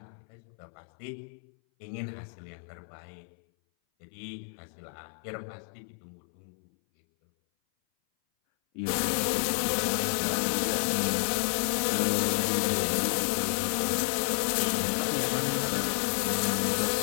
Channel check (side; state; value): right; silent; 58 dB below the other